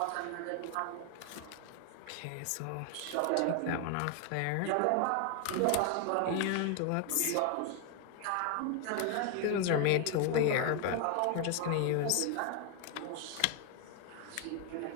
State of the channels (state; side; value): different; both; correlation 0.01